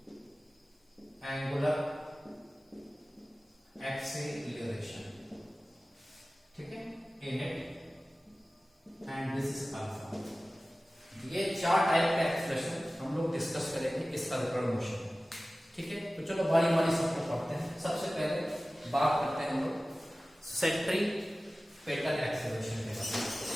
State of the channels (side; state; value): both; normal; correlation 0.97